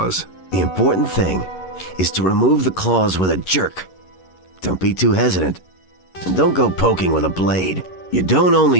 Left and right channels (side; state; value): right; late; 11 ms